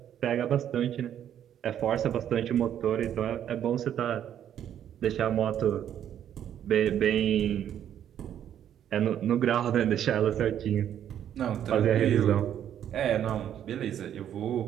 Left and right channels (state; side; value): quieter; left; 10.1 dB